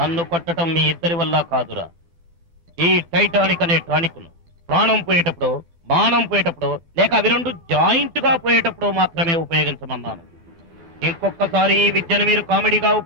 కొట్టడం మీ ఇద్దరి వల్ల కాదురా. ఈ టైటానిక్ అనే టానిక్ ను ప్రాణం పోయేటప్పుడు, మానం పోయేటప్పుడు, లేక అవి రెండు జాయింట్ గా పోయేటప్పుడు మాత్రమే ఉపయోగించమన్నాను. ఇంకొకసారి ఈ విద్యను మీరు కామెడీగా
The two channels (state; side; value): late; left; 12 ms